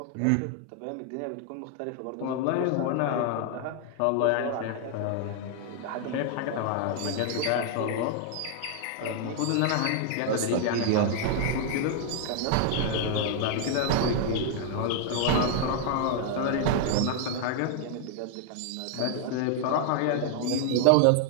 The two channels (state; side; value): different; both; correlation 0.00